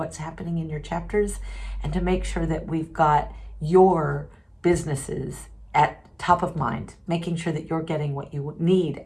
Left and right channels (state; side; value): identical; both; correlation 1.00